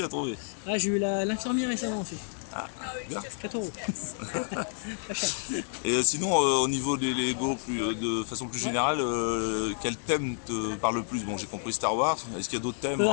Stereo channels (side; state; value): right; silent; 58 dB below the other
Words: à trouver. Ah, j'ai eu l'infirmière récemment aussi. Ah, bien. 4 euros. Pas cher. Et sinon, au niveau des Lego, de façon plus Ouais. générale, quel thème te parle le plus? Bon, j'ai compris Star Wars. Est-ce qu'il y a d'autres thèmes